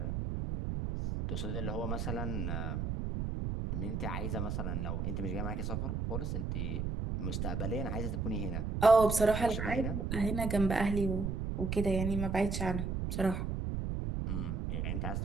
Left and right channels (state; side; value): noise; right; rumble, 1 dB below the sound